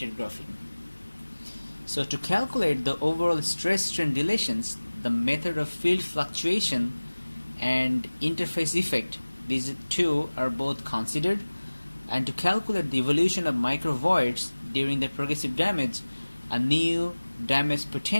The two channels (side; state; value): both; inverted; correlation -1.00